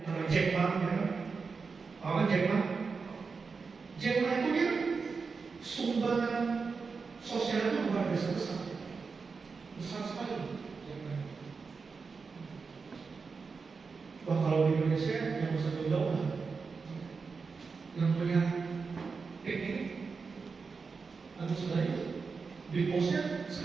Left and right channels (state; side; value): quieter; left; 4.9 dB